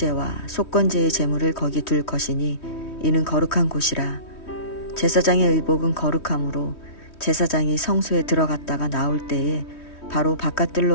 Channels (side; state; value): right; late; 3.2 ms